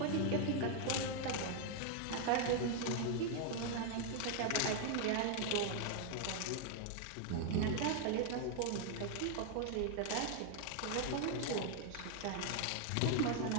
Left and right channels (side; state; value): both; different; correlation 0.00